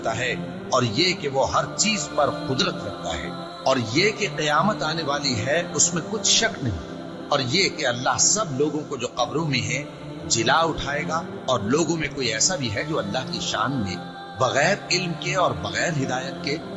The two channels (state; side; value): identical; both; correlation 1.00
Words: है, और ये कि वो हर चीज पर कुदरत रखता है, और ये कि क़यामत आने वाली है उसमें कुछ शक नहीं, और ये कि अल्लाह सब लोगों को जो कब्रों में है जिला उठाएगा। और लोगों में कोई ऐसा भी है जो अल्लाह की शान में बगैर इल्म के और बगैर हिदायत के